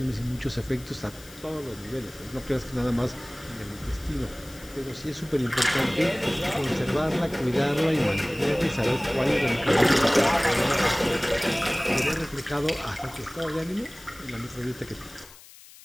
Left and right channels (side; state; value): left; noise; hiss, 20 dB below the sound